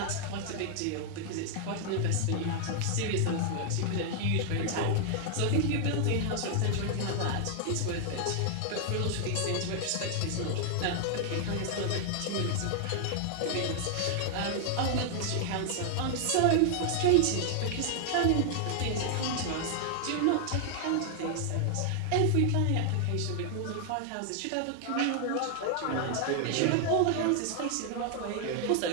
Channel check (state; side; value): different; both; correlation 0.00